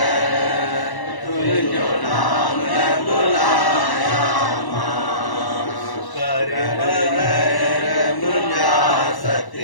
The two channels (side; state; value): right; late; 1.1 ms